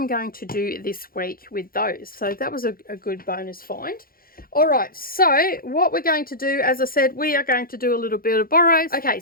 going to do this week with those. So that was a good bonus find. All right, so what we're going to do, as I said, we are going to do a little bit of Boros. Okay,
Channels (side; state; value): right; late; 0.42 ms